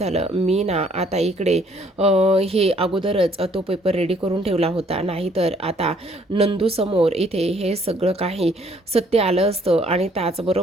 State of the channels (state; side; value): normal; both; correlation 0.63